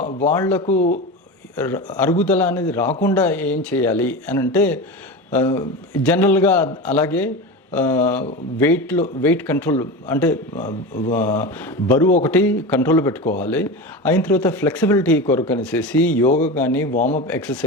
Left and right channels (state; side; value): normal; both; correlation 0.25